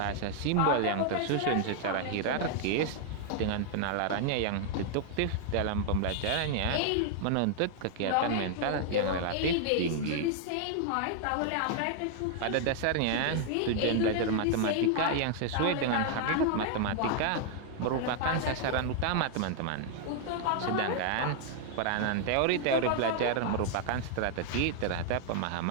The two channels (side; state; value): both; different; correlation 0.00